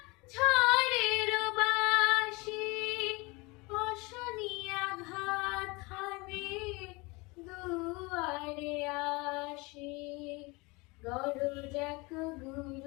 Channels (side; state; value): right; quieter; 25.7 dB